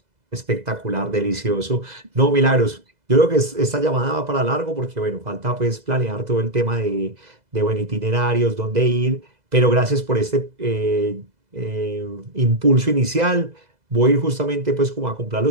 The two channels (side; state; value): left; late; 2.0 ms